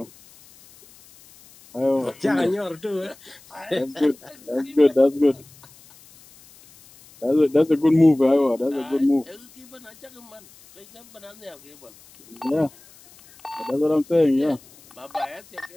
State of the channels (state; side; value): noise; left; hiss, 25 dB below the sound